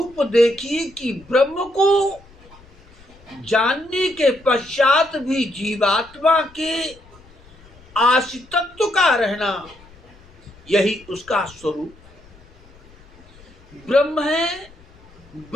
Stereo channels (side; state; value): left; noise; rumble, 25 dB below the sound